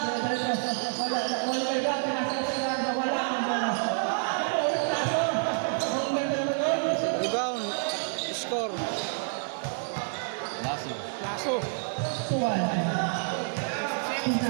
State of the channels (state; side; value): silent; left; digital silence